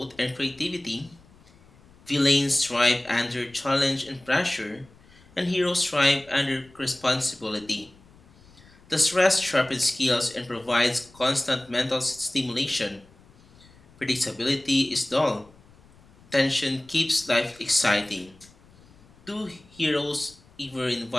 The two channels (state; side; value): noise; left; rumble, 27 dB below the sound